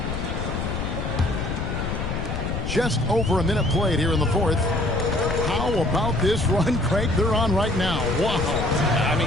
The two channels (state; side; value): noise; left; rumble, 3 dB below the sound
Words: Just over a minute played here in the 4th. How about this run, Craig, they're on right now? Wow. I